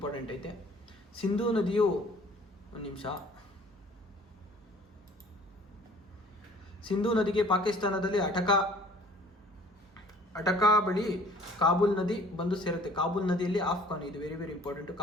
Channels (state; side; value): normal; both; correlation 0.52